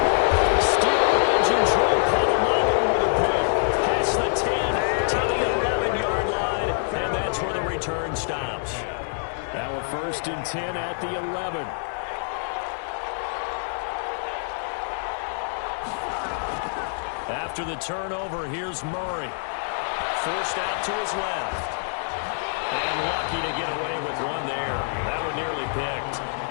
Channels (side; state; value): right; silent; digital silence